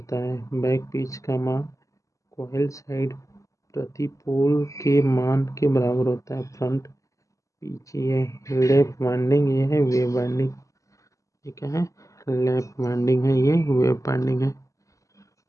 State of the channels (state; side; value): late; right; 0.16 ms